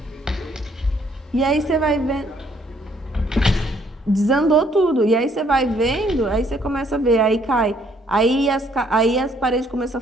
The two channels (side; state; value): both; normal; correlation 0.66